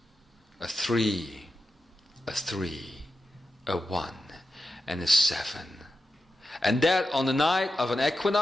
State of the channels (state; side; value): normal; both; correlation 0.90